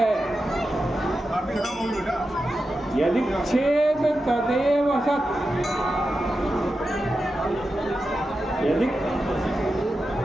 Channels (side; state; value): both; normal; correlation 0.90